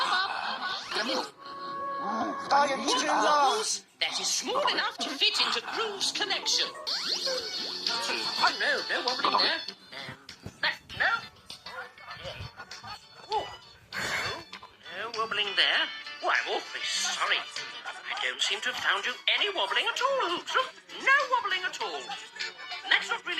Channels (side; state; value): both; identical; correlation 1.00